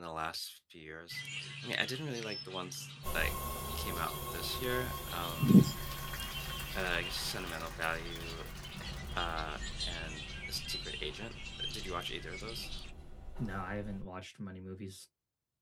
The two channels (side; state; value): both; identical; correlation 1.00